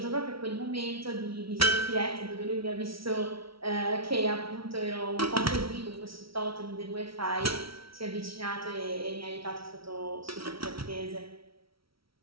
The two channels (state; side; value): late; left; 0.75 ms